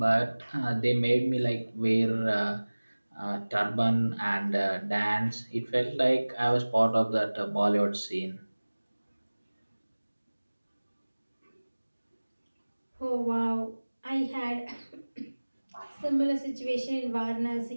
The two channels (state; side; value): inverted; both; correlation -1.00